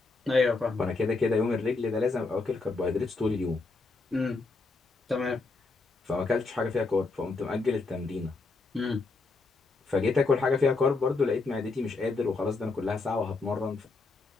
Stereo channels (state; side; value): quieter; right; 3.8 dB